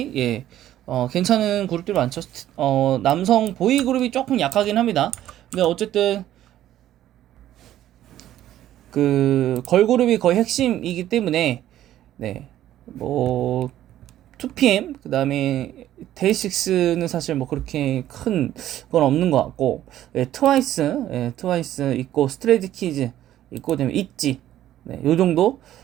예, 괜찮은 그룹들이 많죠. 남성 보이 그룹이 조금 약하긴 합니다. 근데 어쨌든 그 걸그룹이 거의 핵심이기 때문에, 네, 뭐 2PM 그다음에 데이식스는 사실 뭐 그렇게 큰 건 없는 것 같고, 예, 트와이스 있고, 스트레이키즈 있고, 그다음에 있지, 네, 요 정도,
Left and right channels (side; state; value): left; quieter; 12.7 dB